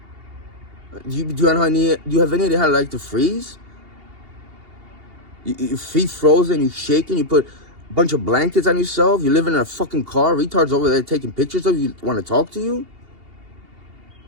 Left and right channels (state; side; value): late; left; 2.8 ms